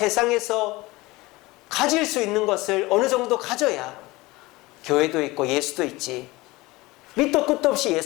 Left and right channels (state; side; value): quieter; right; 21.1 dB